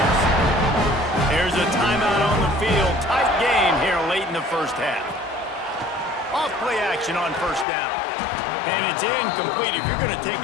There's a timeout on the field. Tight game here late in the first half. Off-play action on first down. And it's incomplete. If you're going to take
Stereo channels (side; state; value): right; drops out; at 7.7 s